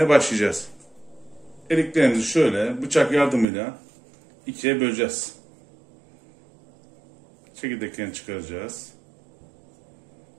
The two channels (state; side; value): drops out; left; at 3.5 s